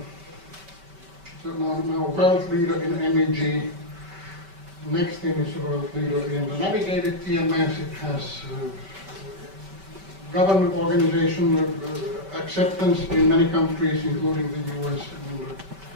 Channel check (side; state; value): left; late; 5.2 ms